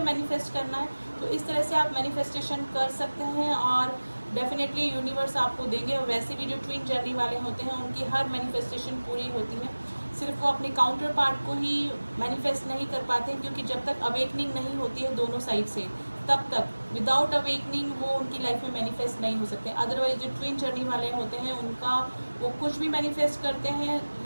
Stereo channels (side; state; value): both; inverted; correlation -1.00